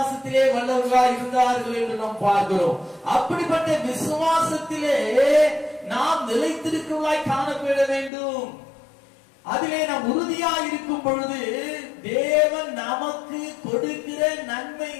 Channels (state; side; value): drops out; right; at 8.1 s